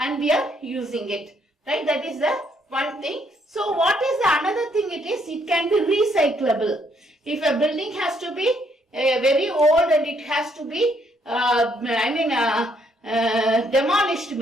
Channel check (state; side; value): normal; both; correlation 0.71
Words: we are using it. Right? That is the one thing. So what is the another thing it is? It can be recyclable. If a building has to be very old and it has to be, demolished